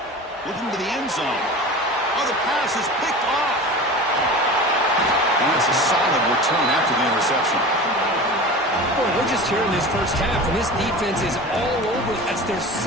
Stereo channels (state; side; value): normal; both; correlation 0.34